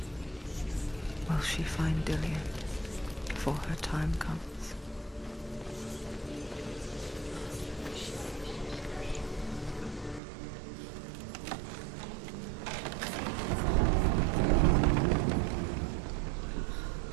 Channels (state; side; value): drops out; left; at 10.2 s